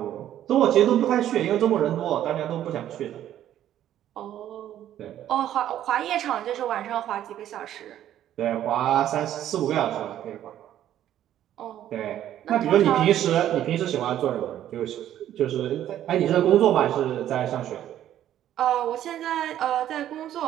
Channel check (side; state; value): left; quieter; 11.7 dB